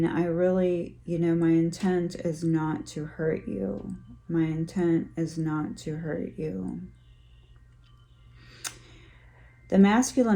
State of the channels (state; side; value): identical; both; correlation 1.00